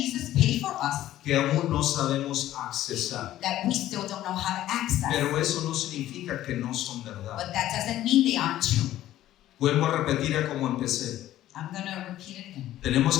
paid for us que aún no sabemos accesar. that we still don't know how to access. Pero eso no significa que no son verdad. But that doesn't mean they aren't true. Vuelvo a repetir a como empecé. I'm going to repeat it again.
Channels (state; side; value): quieter; right; 13.6 dB